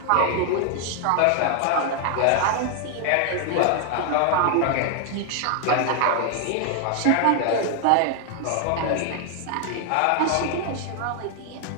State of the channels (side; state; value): both; different; correlation 0.00